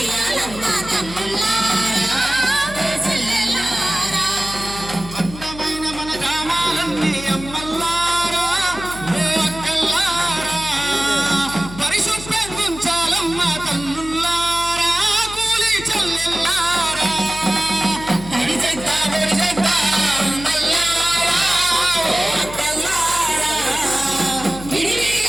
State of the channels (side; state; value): left; noise; hum, 13 dB below the sound